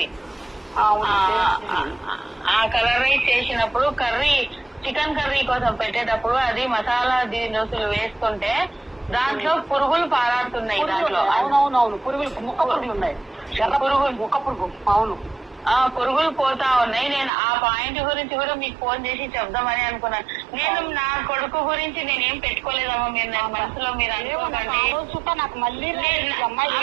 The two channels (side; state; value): left; drops out; at 17.3 s